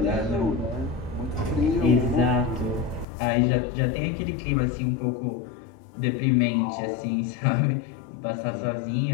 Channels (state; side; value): drops out; right; at 3.1 s